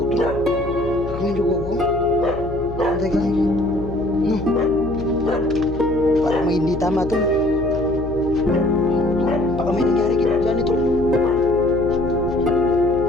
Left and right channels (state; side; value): noise; left; hum, 10 dB below the sound